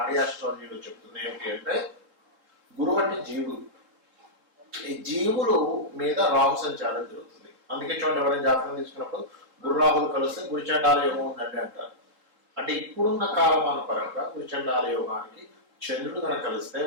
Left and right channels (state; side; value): late; left; 3.7 ms